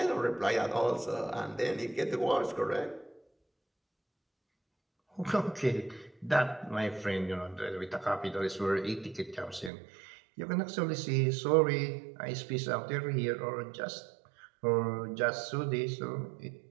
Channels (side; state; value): left; drops out; at 9.7 s